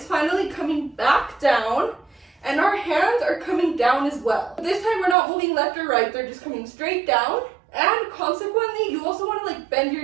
finally coming back down, and our hands are coming down as well. This time we're not moving left or right, they're just coming straight down. And consequently, you also want to like bend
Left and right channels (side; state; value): left; drops out; at 5.2 s